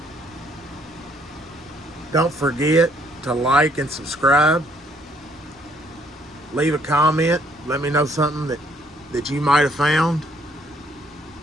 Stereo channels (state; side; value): normal; both; correlation 0.65